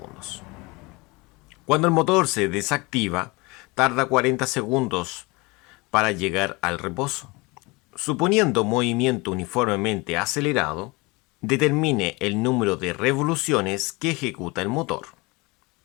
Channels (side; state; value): right; quieter; 25.2 dB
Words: Cuando el motor se desactiva, tarda 40 segundos para llegar al reposo. Suponiendo movimiento uniformemente acelerado, determine el número de revoluciones que ejecuta el motor.